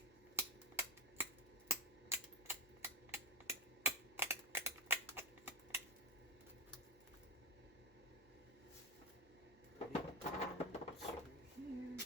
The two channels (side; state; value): left; noise; hum, 28 dB below the sound